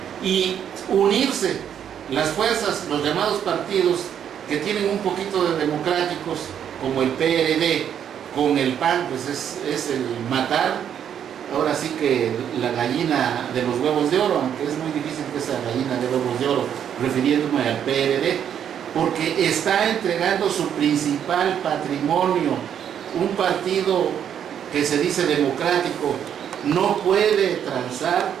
y unirse las fuerzas, los llamados partidos que tienen un poquito de democráticos, como el PRD, con el PAN, pues es el matar, ahora sí que la gallina de los huevos de oro, aunque es muy difícil que esa gallina de huevos de oro, refiriéndome al PRD, porque está entregando su principal patrimonio. Un partido que se dice democrático no puede transar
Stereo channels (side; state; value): left; quieter; 9.0 dB